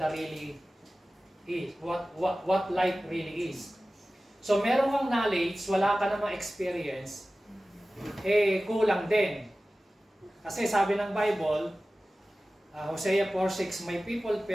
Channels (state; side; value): normal; both; correlation 0.96